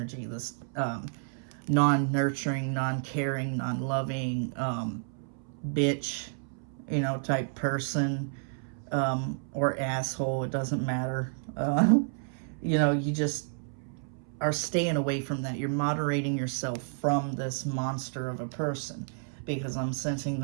this non-nurturing, non-caring, non-loving, bitch, you know, type person, or asshole, it doesn't matter. You know, you just are staying away from that. You're moderating yourself from this monster of a person, because I'm sensing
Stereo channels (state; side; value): silent; left; 57 dB below the other